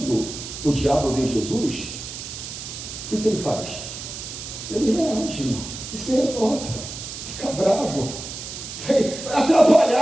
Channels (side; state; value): right; noise; hiss, 9 dB below the sound